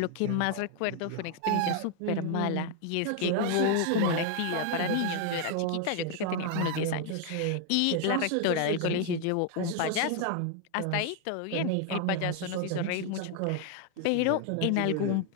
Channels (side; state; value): both; different; correlation 0.00